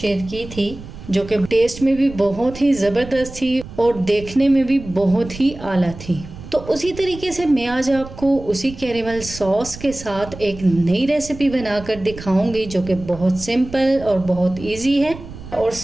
की थी, जो कि टेस्ट में भी बहुत ही ज़बरदस्त थी और देखने में भी बहुत ही आला थी। तो उसी तरीके से मैं आज आपको उसी कैरेमल सॉस के साथ एक नई रेसिपी बनाकर दिखाऊंगी, जो कि बहुत सिंपल और बहुत इजी है और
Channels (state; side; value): noise; right; rumble, 14 dB below the sound